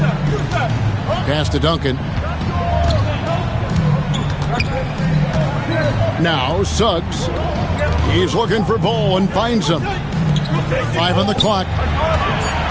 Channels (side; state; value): both; identical; correlation 1.00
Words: Pass to Duncan. Now Suggs. He's looking for Bol and finds him. 5 on the clock.